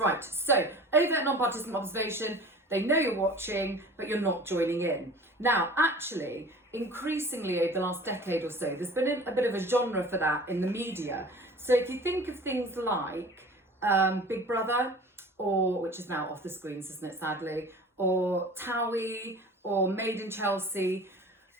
so overt non-participant observation, they know you're watching, but you're not joining in. Now, actually, increasingly over the last decade or so, there's been a bit of a genre for that in the media. So if you think of things like Big Brother, or which is now off the screens, isn't it, sadly, or Towie, or Made in Chelsea,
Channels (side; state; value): both; normal; correlation 0.42